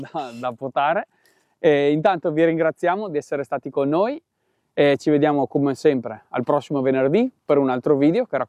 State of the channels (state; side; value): identical; both; correlation 1.00